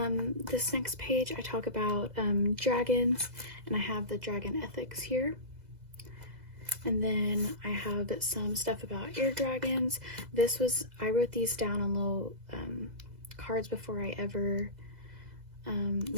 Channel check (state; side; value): late; left; 2.0 ms